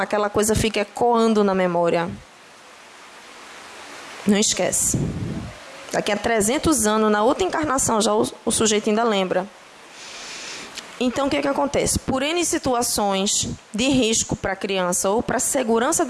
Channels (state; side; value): identical; both; correlation 1.00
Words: coisa fica ecoando na memória. Não esquece. Daqui a 300 anos, na outra encarnação, já o sujeito ainda lembra. Então, o que acontece? Por N situações de risco para a criança ou para a segurança